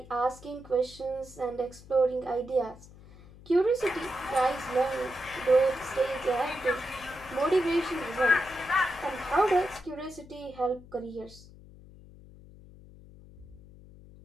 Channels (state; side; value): noise; left; hum, 20 dB below the sound